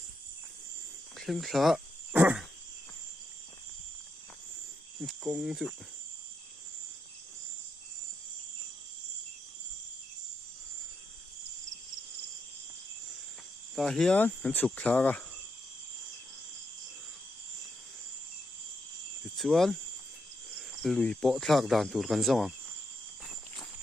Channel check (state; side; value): normal; both; correlation 0.83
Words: khen khá công dụng ta hiền hắn sụp khá à chuan lùi bộ thạc đàn tụt gần rong